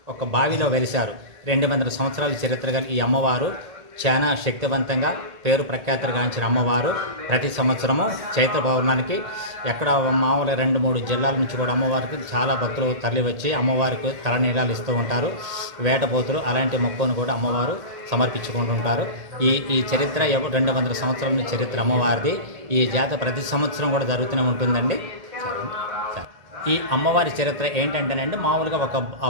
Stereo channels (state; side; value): late; left; 1.8 ms